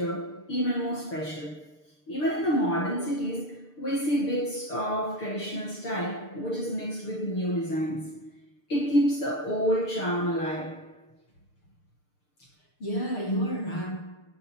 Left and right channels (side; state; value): right; late; 6.7 ms